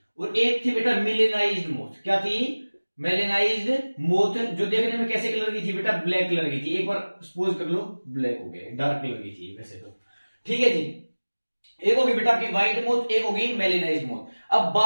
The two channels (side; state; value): both; inverted; correlation -1.00